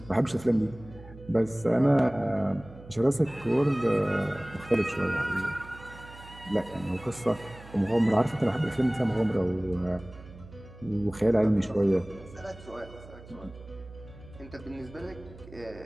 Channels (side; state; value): right; noise; hum, 18 dB below the sound